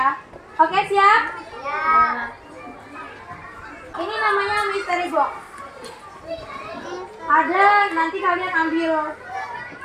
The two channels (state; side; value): identical; both; correlation 1.00